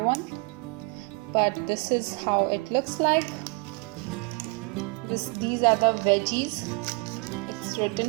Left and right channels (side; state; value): left; quieter; 28.4 dB